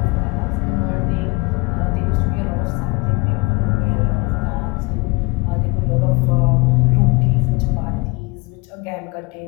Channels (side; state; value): right; quieter; 26.3 dB